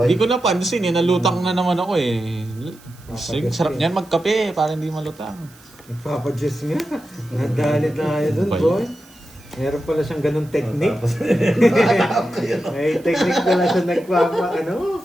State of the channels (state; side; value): noise; right; hiss, 26 dB below the sound